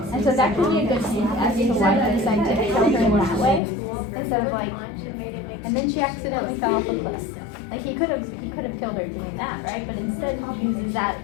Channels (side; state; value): right; drops out; at 3.6 s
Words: And so that could be a good hint as to why they decided to kill her in that way. Instead of like, and then she accidentally fell off a cliff. Like he could have killed her doing that, right? But instead he uses that